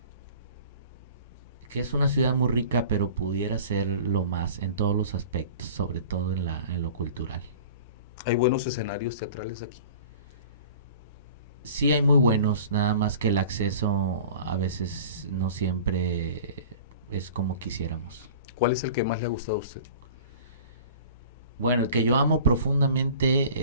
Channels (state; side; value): inverted; both; correlation -0.43